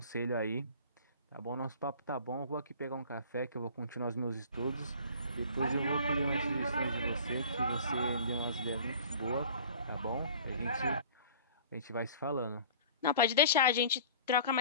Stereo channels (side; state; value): both; inverted; correlation -0.45